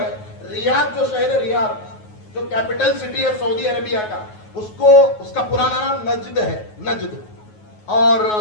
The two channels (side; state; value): right; late; 9.4 ms